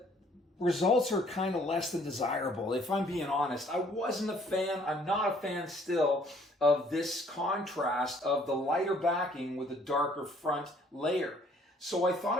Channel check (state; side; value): normal; both; correlation 0.61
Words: results are kind of less than desirable. If I'm being honest, I wasn't a fan, I'm not a fan still of this contrast of the lighter backing with a darker front layer. So I thought